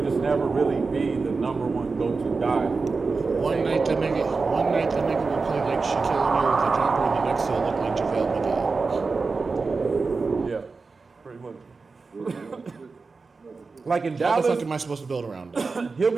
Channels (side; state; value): left; quieter; 4.3 dB